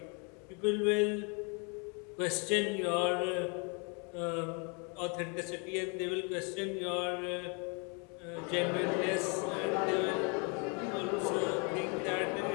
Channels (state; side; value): quieter; right; 34.8 dB